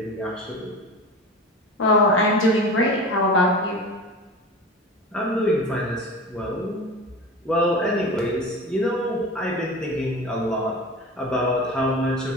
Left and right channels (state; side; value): normal; both; correlation 0.32